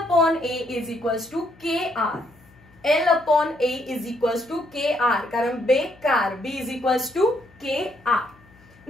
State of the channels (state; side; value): noise; left; hum, 28 dB below the sound